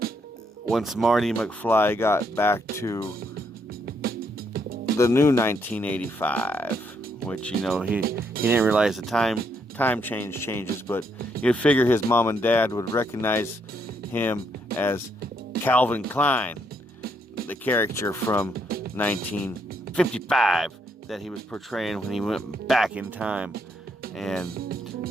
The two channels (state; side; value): normal; both; correlation 0.74